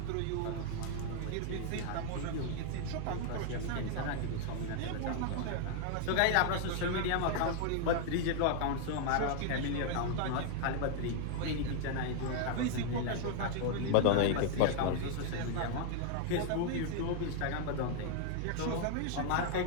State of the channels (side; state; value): both; different; correlation 0.00